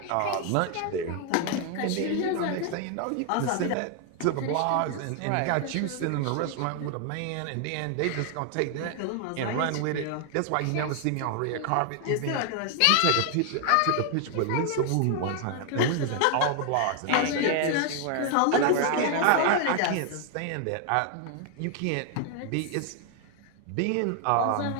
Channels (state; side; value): different; both; correlation 0.00